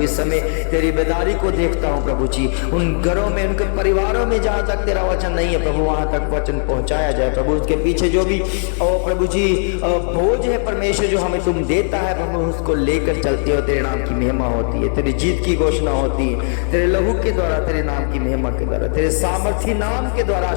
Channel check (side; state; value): right; silent; 59 dB below the other